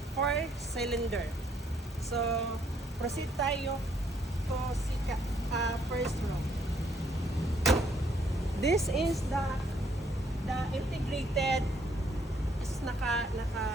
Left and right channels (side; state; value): both; normal; correlation 0.68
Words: 4-cylinder. So proceed tayo to first row. This is the integrated